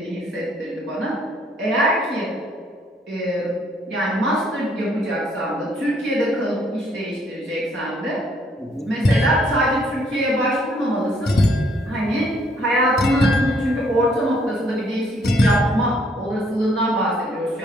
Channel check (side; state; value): both; normal; correlation 0.67